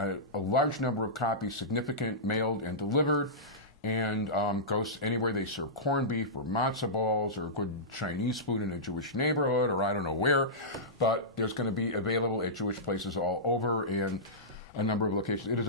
large number of copies, significant, mailed and delivered, and goes anywhere they serve corned beef or matzo balls or good Chinese food in a Jewish neighborhood or I don't know where, but there's going to be available at Jewish places all over and a number of locations. It is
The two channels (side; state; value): both; normal; correlation -0.16